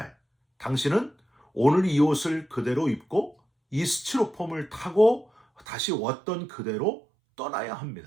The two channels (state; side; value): drops out; left; at 5.7 s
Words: 당신은 오늘 이 옷을 그대로 입고 이 스티로폼을 타고 다시 왔던 그대로 떠나야